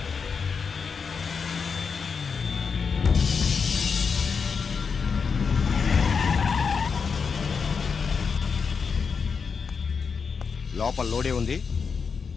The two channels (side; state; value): right; quieter; 5.6 dB